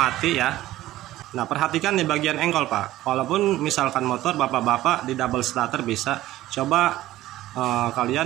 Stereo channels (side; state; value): left; quieter; 15.3 dB